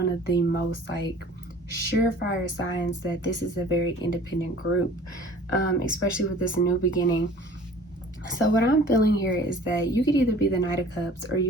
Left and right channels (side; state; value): both; normal; correlation 0.47